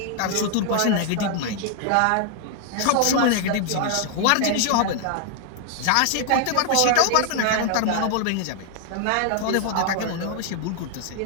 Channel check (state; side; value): different; both; correlation 0.00